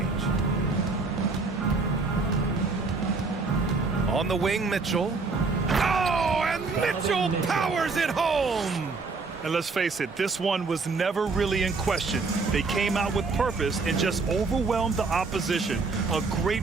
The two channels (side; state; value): left; quieter; 4.1 dB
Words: On the wing, Mitchell. Oh, and Mitchell powers it home. And let's face it, this one was never really in question. They came out with purpose and just overwhelmed the opposition. A